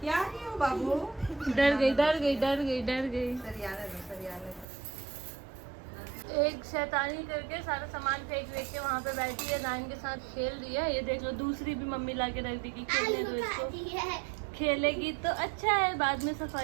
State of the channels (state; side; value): drops out; left; at 4.7 s